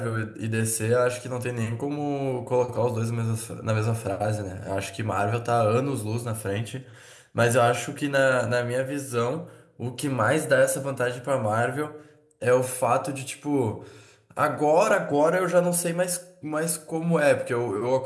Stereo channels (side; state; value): both; identical; correlation 1.00